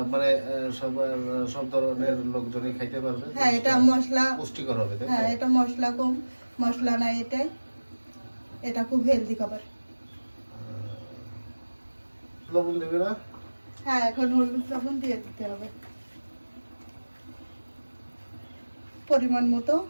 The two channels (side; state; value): both; inverted; correlation -1.00